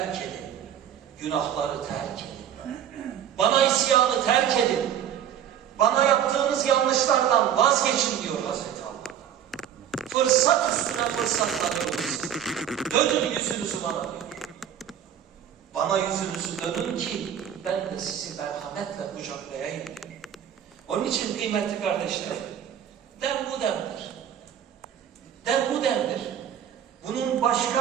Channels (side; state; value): left; quieter; 9.6 dB